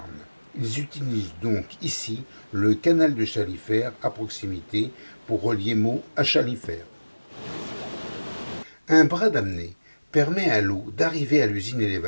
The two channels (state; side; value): inverted; both; correlation -1.00